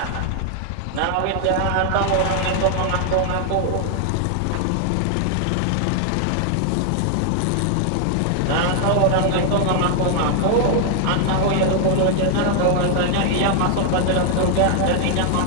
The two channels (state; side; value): different; both; correlation 0.00